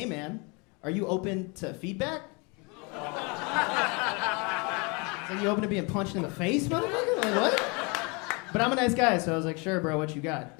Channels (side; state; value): right; quieter; 30.3 dB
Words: man, are you open to feedback?" So you open to being punched in the face, motherfucker? Like, what? But I'm a nice guy, so I was like, "Sure, bro, what you got?"